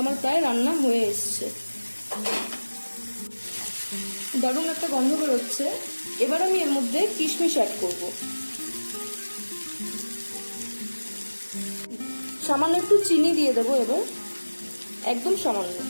আমার প্রায় রান্না হয়ে এসছে। দারুণ একটা গন্ধ বেরোচ্ছে। এবার আমি এর মধ্যে কিশমিশ অ্যাড করব। সামান্য একটু চিনি দিয়ে দেবো, এবার একদম সামান্য।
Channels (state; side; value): inverted; both; correlation -1.00